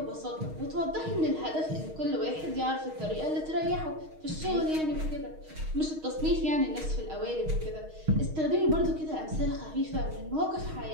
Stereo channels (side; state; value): left; late; 6.4 ms